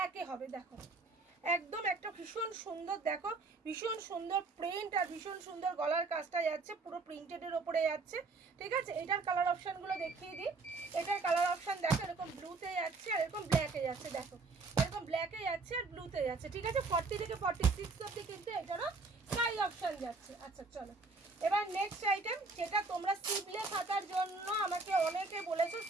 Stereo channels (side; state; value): left; quieter; 3.8 dB